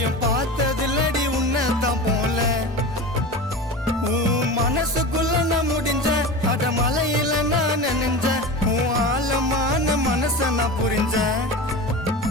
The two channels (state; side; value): normal; both; correlation 0.29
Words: பார்த்ததில்லடி உன்னதான் போல உன் மனசுக்குள்ள நான் முடிஞ்ச அட மலையில நான் நினைஞ்ச உன் ஆழமான மனச நான் புரிஞ்ச